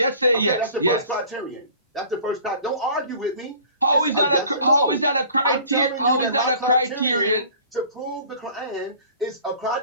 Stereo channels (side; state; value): both; inverted; correlation -0.48